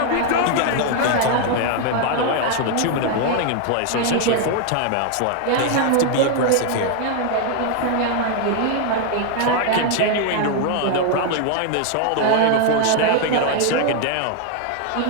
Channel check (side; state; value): both; different; correlation 0.00